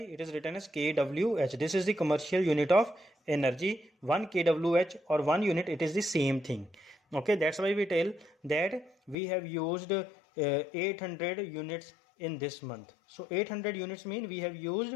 is written as kWh. This is the commercial unit of energy. 1 kWh or 1 unit, it is the same thing. Okay, that's why we tell that we have used 800 units in this month. So 800 units mean we have used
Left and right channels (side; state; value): right; drops out; at 9.2 s